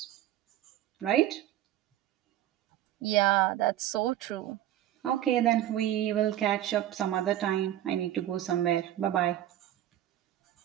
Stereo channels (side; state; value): left; quieter; 12.7 dB